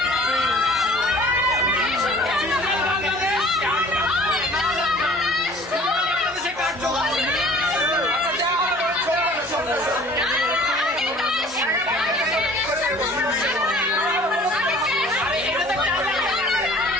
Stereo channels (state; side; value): normal; both; correlation 0.50